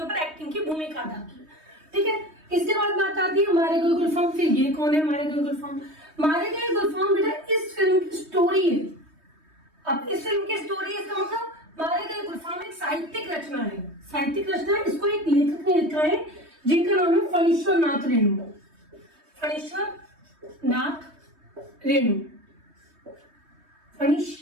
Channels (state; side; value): late; left; 3.2 ms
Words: ऊपर एक्टिंग की भूमिका अदा की। ठीक है, इसके बाद बात आती है मारे गए गुलफाम। फिर ये कौन है मारे गए गुलफाम? मारे गए गुलफाम बेटा इस फिल्म की स्टोरी है। अब इस फिल्म की स्टोरी, इसका मतलब मारे गए गुलफाम एक साहित्यिक रचना है। साहित्यिक रचना है, इसको एक लेखक ने लिखा है जिनका नाम है फणीश्वर नाथ रेणु। फणीश्वर नाथ रेणु,